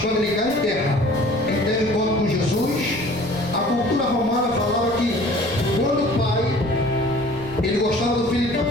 ele cai em terra, ele teve encontro com Jesus. A cultura romana falava que quando o pai, ele gostava do filho, então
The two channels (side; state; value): right; noise; rumble, 20 dB below the sound